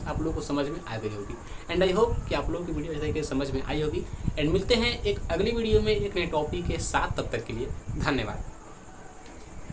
आप लोगों को समझ में आ गई होगी। एंड आई होप कि आप लोगों की वीडियो अच्छे तरीके से समझ में आई होगी। एंड मिलते हैं एक अगली वीडियो में एक नए टॉपिक के साथ, तब तक के लिए धन्यवाद।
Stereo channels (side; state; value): both; identical; correlation 1.00